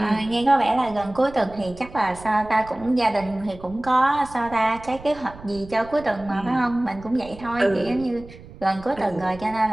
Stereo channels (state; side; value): noise; right; rumble, 18 dB below the sound